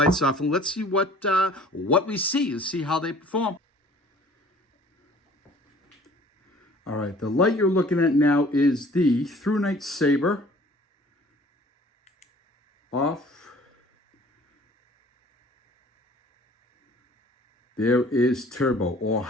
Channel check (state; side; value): normal; both; correlation 0.51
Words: off and let's see what we see. Let's see how they perform. All right, the light you're looking at now is the ThruNite Saber. Off. There is turbo or